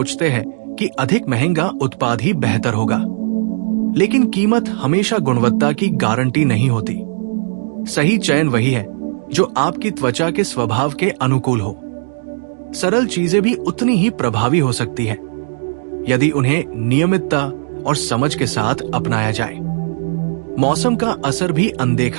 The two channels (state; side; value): silent; left; digital silence